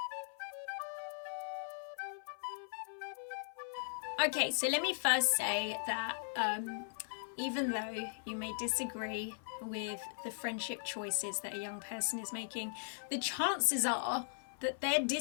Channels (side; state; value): right; silent; 52 dB below the other